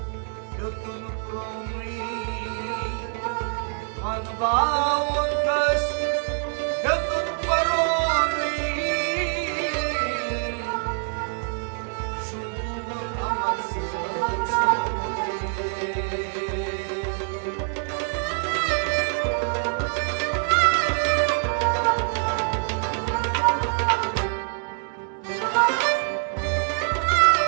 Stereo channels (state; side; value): silent; left; 57 dB below the other